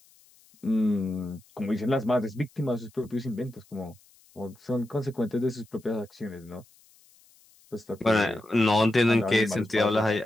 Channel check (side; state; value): left; noise; hiss, 29 dB below the sound